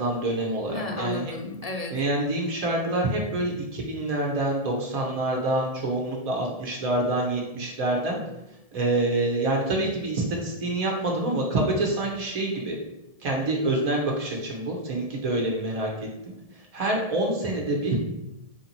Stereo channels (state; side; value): late; left; 1.7 ms